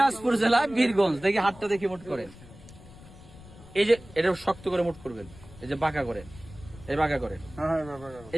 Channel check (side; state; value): left; noise; rumble, 19 dB below the sound